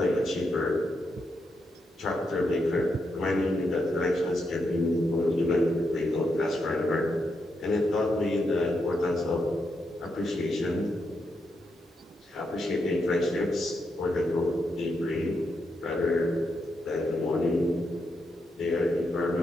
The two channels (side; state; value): both; normal; correlation 0.82